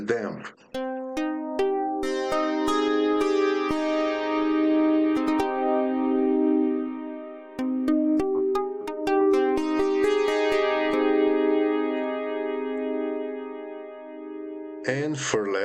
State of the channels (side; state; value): both; identical; correlation 1.00